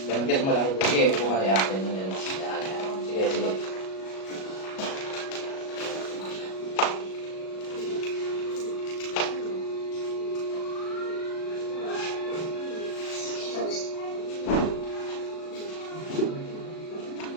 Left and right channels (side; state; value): right; late; 37 ms